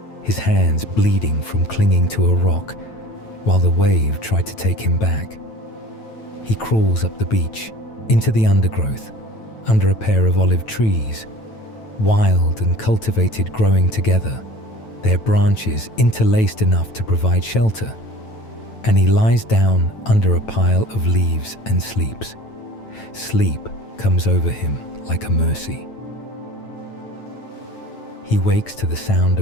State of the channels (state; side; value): late; right; 9.1 ms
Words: his hands bleeding from clinging to a rock while the wave tried to take him back. He crawls up the beach, into the undergrowth, under a pair of olive trees, wild and cultivated growing together, their branches interlaced enough to provide shelter, and he lies down under a pile of leaves and sleeps. Sleep comes over him like a mercy. He wakes to the sound